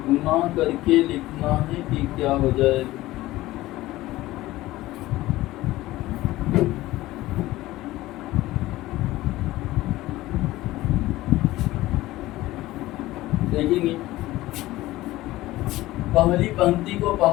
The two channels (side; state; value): right; quieter; 17.1 dB